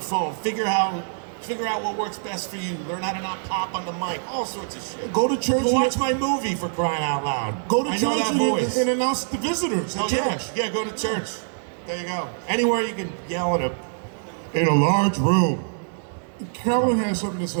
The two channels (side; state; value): left; silent; digital silence